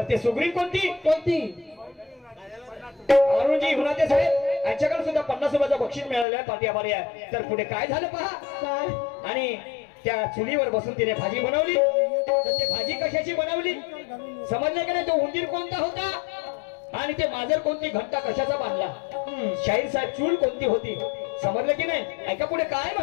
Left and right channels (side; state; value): right; drops out; at 6.2 s